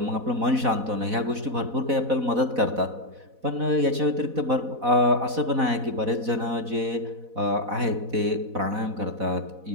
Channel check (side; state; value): left; late; 4.1 ms